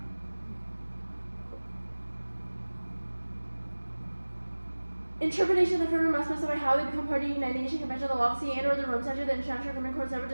Interpretation of the framework must specify how they become party to the United Nations Convention of the Law of the Sea and/or the Rome Statute, the International Criminal Court, separate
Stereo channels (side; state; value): both; inverted; correlation -1.00